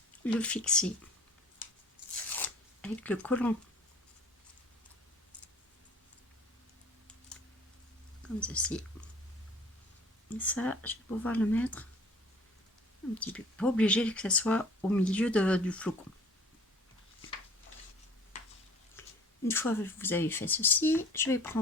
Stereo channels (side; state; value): both; normal; correlation 0.49